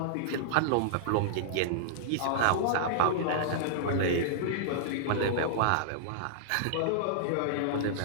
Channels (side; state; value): both; different; correlation -0.02